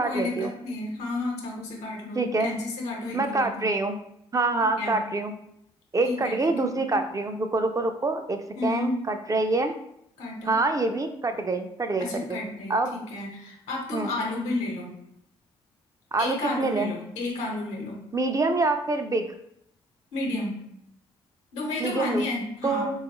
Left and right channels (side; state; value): both; normal; correlation 0.56